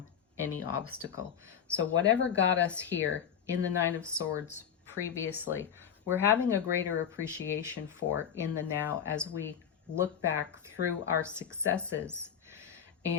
any obstacle. So whatever got us here in the Nine of Swords previously, we're having a greater appreciation for in the now as we look back through our successes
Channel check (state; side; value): quieter; right; 8.2 dB